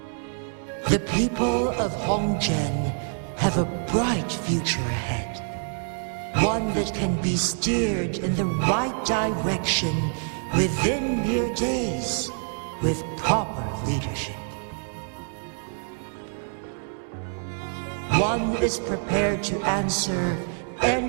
The people of Hongzhen have a bright future ahead. One that can be steered in the right direction within mere days with proper leadership. One is prepared to answer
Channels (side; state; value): left; silent; 61 dB below the other